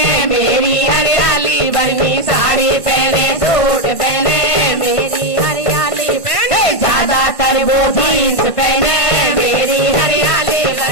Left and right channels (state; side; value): late; right; 1.5 ms